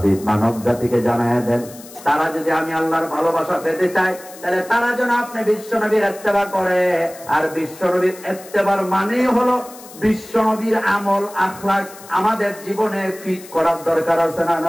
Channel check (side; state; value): left; noise; hiss, 19 dB below the sound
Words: মানব জাতিকে জানায়া দেন, তারা যদি আমি আল্লাহর ভালোবাসা পেতে চায় তাহলে তারা যেন আপনি বিশ্বনবীর ইত্তেবা করে। আর বিশ্বনবীর ইত্তেবার মানে হলো বিশ্বনবীর আমল আখলাক আমাদের জীবনে ফিট করার দরকার আছে না